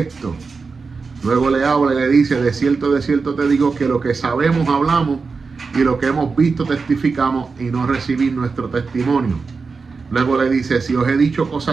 Luego le habla y le dice, de cierto te digo que lo que sabemos hablamos y lo que hemos visto testificamos y no recibís nuestro testimonio. Luego le dice, si os he dicho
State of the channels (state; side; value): quieter; left; 4.6 dB